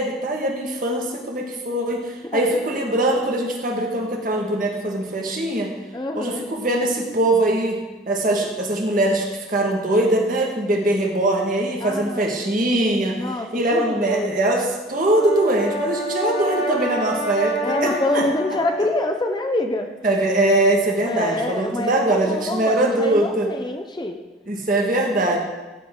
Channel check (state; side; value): normal; both; correlation 0.41